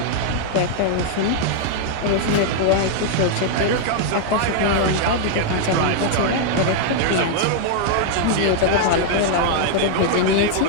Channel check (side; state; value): both; different; correlation 0.00